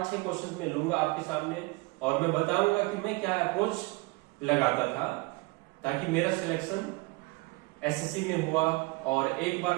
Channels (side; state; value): left; quieter; 25.1 dB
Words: क्वेश्चन मैं लूंगा आपके सामने और मैं बताऊंगा कि मैं क्या अप्रोच लगाता था ताकि मेरा सिलेक्शन एसएससी में हुआ, और एक बार